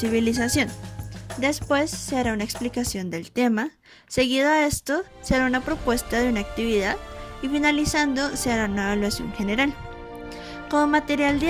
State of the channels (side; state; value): both; identical; correlation 1.00